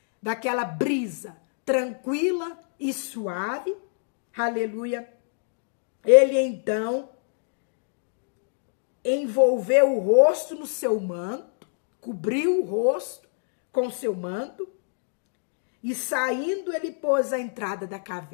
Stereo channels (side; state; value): right; silent; digital silence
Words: daquela brisa tranquila e suave, aleluia, ele então envolveu o rosto no seu manto, cobriu o rosto com seu manto, E saindo, ele pôs a entrada da